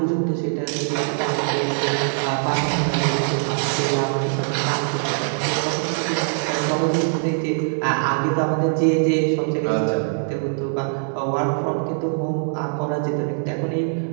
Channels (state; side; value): silent; left; 61 dB below the other